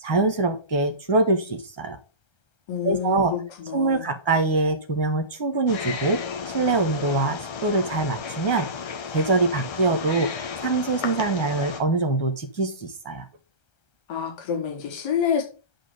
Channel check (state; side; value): late; right; 1.3 ms